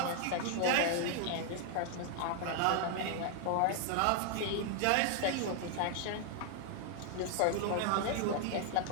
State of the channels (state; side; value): different; both; correlation 0.00